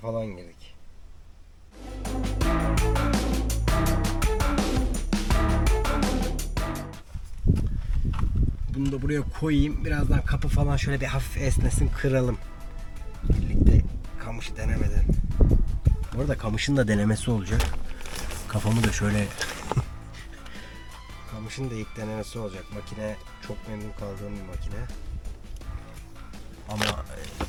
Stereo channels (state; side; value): identical; both; correlation 1.00